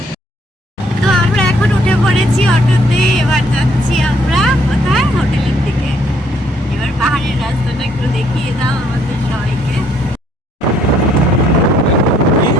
তো আমরা এখন উঠে পড়েছি অটোতে, এবার যাচ্ছি আমরা কোথায়, হোটেলের দিকে। এবার পাহাড়ের রাস্তাটা একটু দেখিয়ে দাও আমাদের সবাইকে।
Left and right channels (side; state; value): both; normal; correlation 0.67